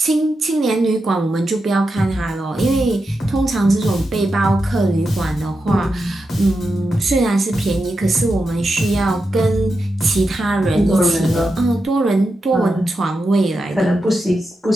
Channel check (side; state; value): both; normal; correlation 0.88